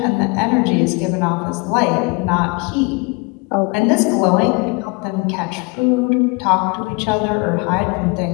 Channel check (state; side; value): quieter; right; 29.3 dB